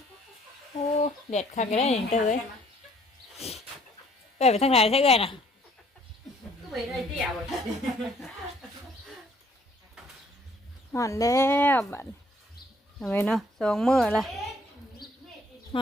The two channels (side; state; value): both; normal; correlation 0.62